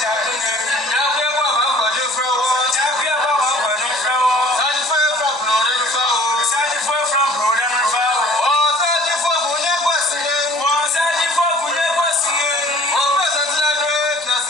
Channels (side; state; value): both; normal; correlation 0.50